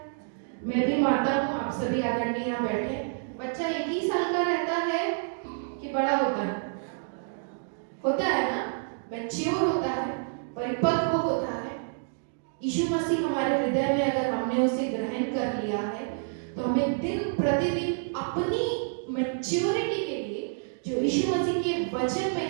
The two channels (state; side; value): silent; left; digital silence